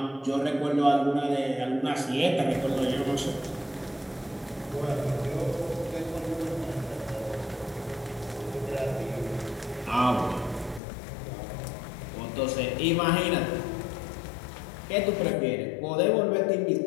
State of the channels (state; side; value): drops out; right; at 10.8 s